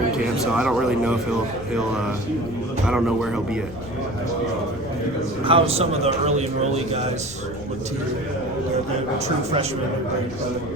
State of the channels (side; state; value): left; noise; rumble, 14 dB below the sound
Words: camp, so I don't really know if he'll. I don't know where he'll be at. How some of the early enrollee guys look to you? The true freshmen,